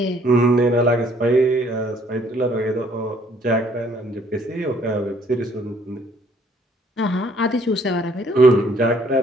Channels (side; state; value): both; normal; correlation 0.63